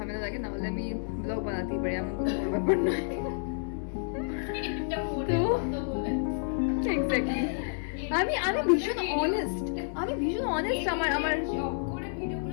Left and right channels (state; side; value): silent; right; 58 dB below the other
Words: লাগে, না হলে আমি ব্লগ বানাতেই পারি, এমন কোনো বড় ব্যাপার নয়। তো এক্স্যাক্টলি আমি ভীষণ অনেস্ট, আমার